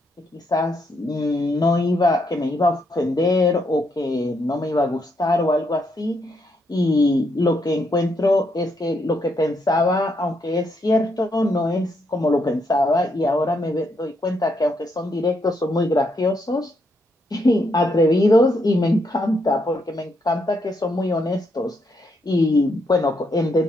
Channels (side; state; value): both; normal; correlation 0.77